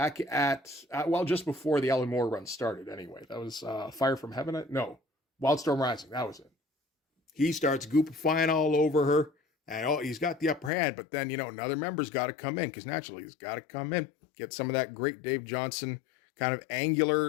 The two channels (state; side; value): drops out; right; at 10.7 s